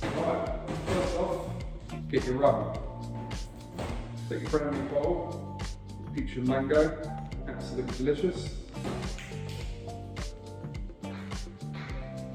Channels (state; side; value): identical; both; correlation 1.00